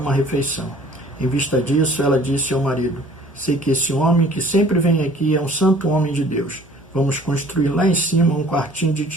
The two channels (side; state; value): both; normal; correlation 0.52